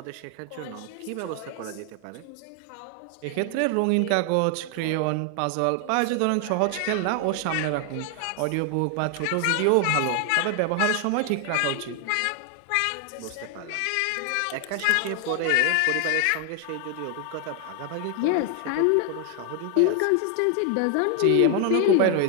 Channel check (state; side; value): different; both; correlation 0.00